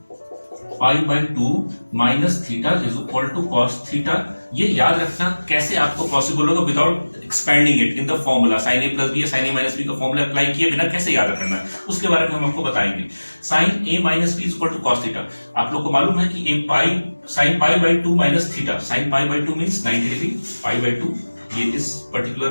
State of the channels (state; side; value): inverted; both; correlation -1.00